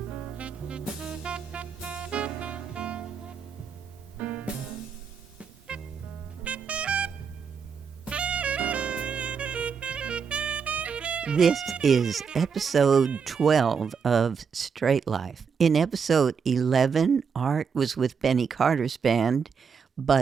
This is episode 12 of Straight Life. In episode 11, Art was with Benny Carter's band,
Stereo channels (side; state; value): left; quieter; 6.2 dB